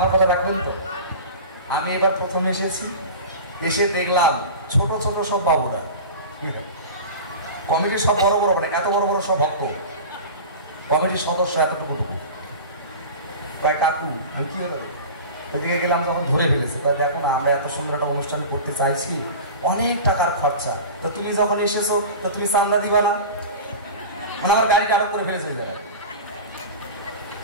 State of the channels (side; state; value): both; inverted; correlation -0.33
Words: কথা রাখবেন তো? আমি এবার প্রথম এসেছি, এসে দেখলাম ছোট ছোট সব বাবুরা, কমিটির সব বড় বড়, মানে এত বড় বড় সব ভক্ত, কমিটির সদস্য এতটুকু। প্রায় কাকু, আমি কি হলো ওইদিকে গেলাম, যখন ধরে ফেলেছে, দেখো না আমরা এত সুন্দর একটা অনুষ্ঠান করতে চাইছি, অনেক টাকার খরচা, তো তুমি যখন এসেছো তো তুমি চান্দা দিবা না? মানে আমার গাড়িটা আটক করে ফেলেছে ওই জায়গায়।